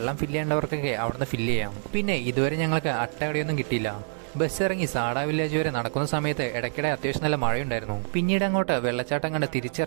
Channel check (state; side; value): silent; left; digital silence